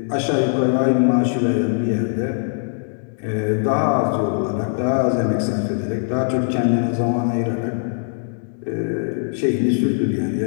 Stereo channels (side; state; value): right; silent; digital silence